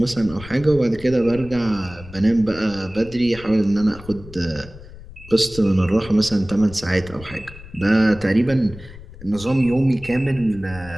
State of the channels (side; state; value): left; noise; rumble, 17 dB below the sound